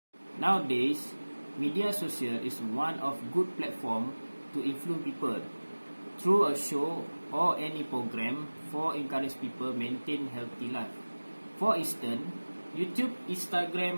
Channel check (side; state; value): both; inverted; correlation -1.00